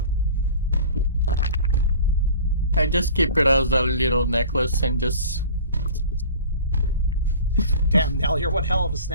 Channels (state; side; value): inverted; both; correlation -0.42